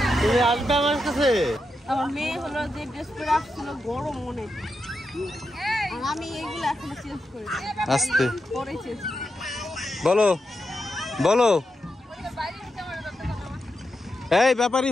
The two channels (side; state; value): both; normal; correlation 0.86